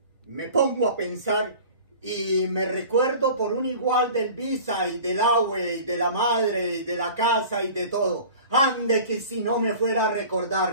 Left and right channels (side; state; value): both; inverted; correlation -0.42